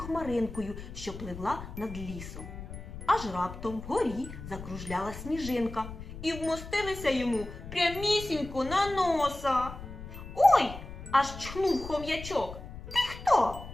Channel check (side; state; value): left; noise; rumble, 11 dB below the sound